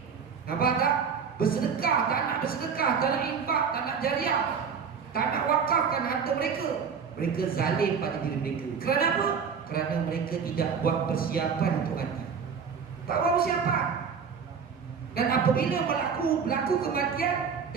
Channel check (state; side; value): quieter; left; 6.3 dB